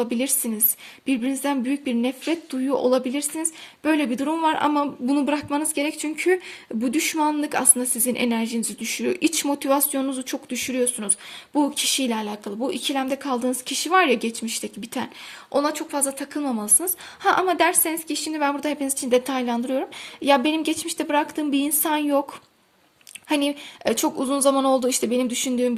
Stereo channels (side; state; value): both; identical; correlation 1.00